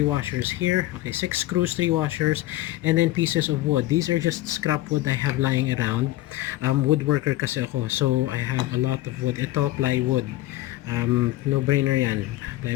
washers here. Okay, 6 screws, 3 washers, and then pieces of wood. These are just scrap wood I have lying around. Woodworker kasi ako, so I have a lot of wood. Ito plywood. No brainer yan.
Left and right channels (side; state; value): right; quieter; 16.3 dB